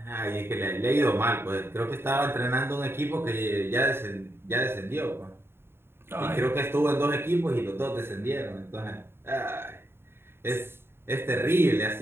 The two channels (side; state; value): left; late; 0.11 ms